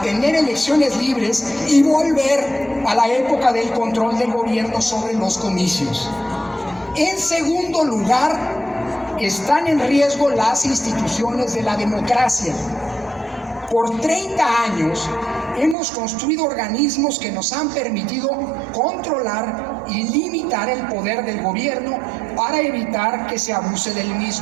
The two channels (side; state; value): left; drops out; at 15.8 s